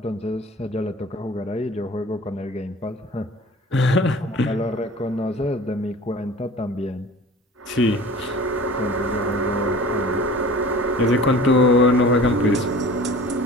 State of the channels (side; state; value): both; normal; correlation 0.43